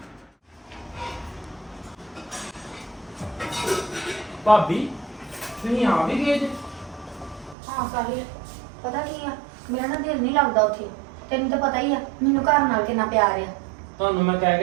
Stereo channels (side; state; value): left; drops out; at 7.6 s